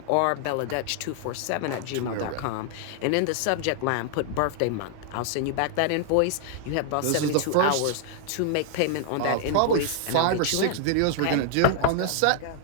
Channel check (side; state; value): both; different; correlation 0.00